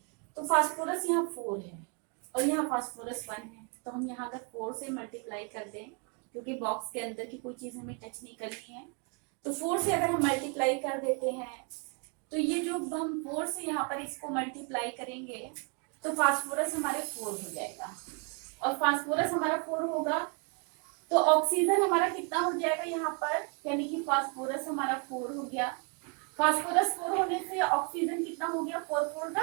तो फास्फोरस यहाँ 4 है और यहाँ फास्फोरस 1 है, तो हम यहाँ अगर 4 से मल्टीप्लाई कर दें, क्योंकि बॉक्स के अंदर की कोई चीज हमें टच नहीं करनी है, तो 4 से अगर हम मल्टीप्लाई कर देते हैं, तो ये जो हम 4 से यहाँ पर इसको मल्टीप्लाई करेंगे, तो फास्फोरस हमारे 4 हो जाएगा, और फास्फोरस हमारा 4 होगा, तो ऑक्सीजन हमारा कितना हो जाएगा यहाँ पर, यानी कि फास्फोरस हमारा 4 हो गया। फास्फोरस 4 होने से ऑक्सीजन कितना हो गया 4 4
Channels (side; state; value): left; quieter; 36.1 dB